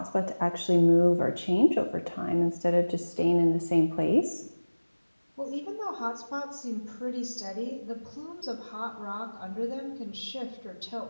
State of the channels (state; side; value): inverted; both; correlation -1.00